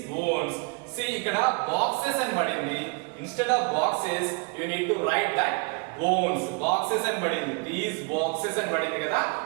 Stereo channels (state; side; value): quieter; left; 32.8 dB